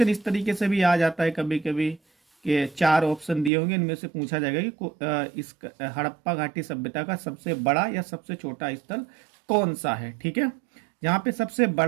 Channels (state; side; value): drops out; left; at 3.5 s